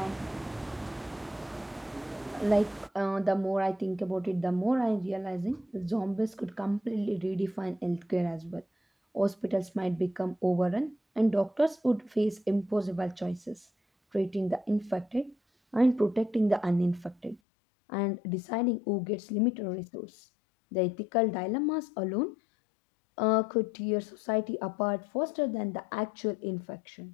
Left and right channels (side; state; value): right; drops out; at 17.4 s